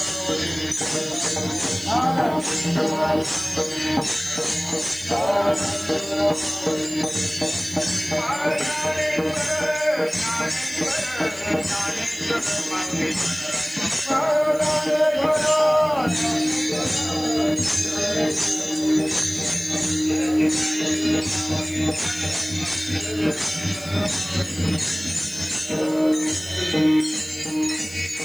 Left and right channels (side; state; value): right; noise; hiss, 21 dB below the sound